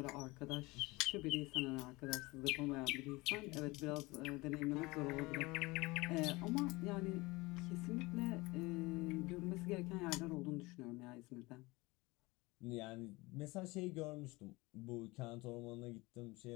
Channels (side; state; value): right; quieter; 22.8 dB